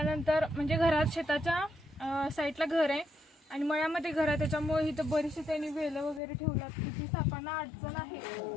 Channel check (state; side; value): drops out; right; at 6.2 s